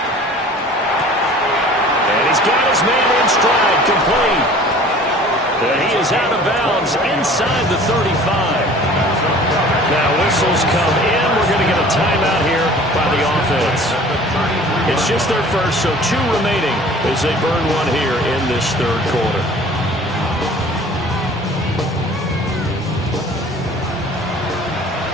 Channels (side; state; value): both; normal; correlation 0.47